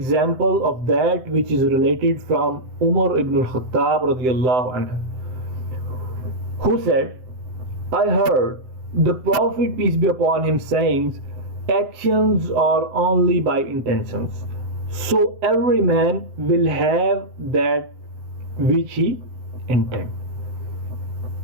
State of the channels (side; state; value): left; late; 7.8 ms